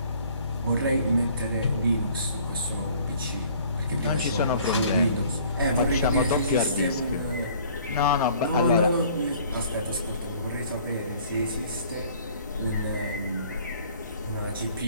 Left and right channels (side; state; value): both; inverted; correlation -0.55